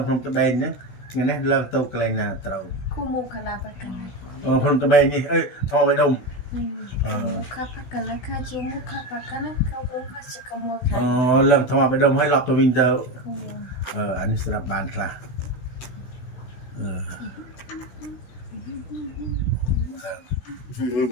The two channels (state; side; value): late; right; 16 ms